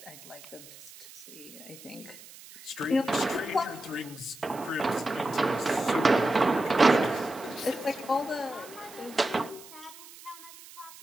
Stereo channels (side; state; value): right; noise; hiss, 18 dB below the sound